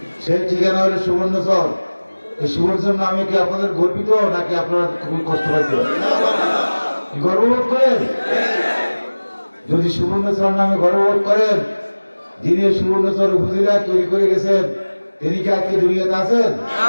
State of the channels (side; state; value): both; inverted; correlation -1.00